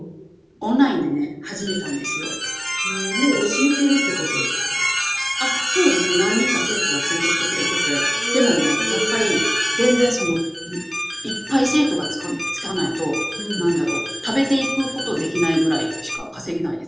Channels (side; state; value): both; identical; correlation 1.00